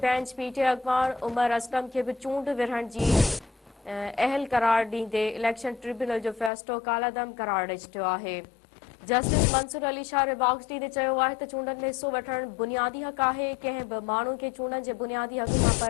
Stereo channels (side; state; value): right; drops out; at 6.5 s